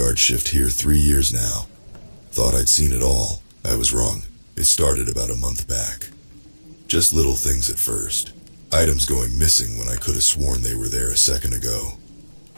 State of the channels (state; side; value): inverted; both; correlation -1.00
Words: shift here 3 years now. Thought I'd seen it all. I was wrong. It started about a month back. Just little things at first. Items going missing when I could have sworn they were there a second ago.